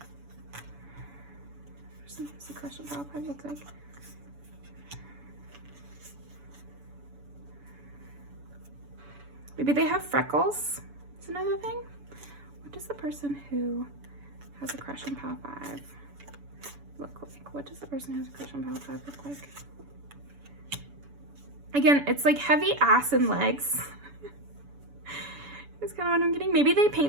Person who has a crush on Pile 5 look like? Maybe they have freckles. Is another thing. What does the person who has a crush on Pile 5 look like? What does the person who has a crush on Pile 5 look like? Again, it's like heavy ass and legs. That's kind of what I'm getting. Maybe they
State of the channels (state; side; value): late; left; 7.0 ms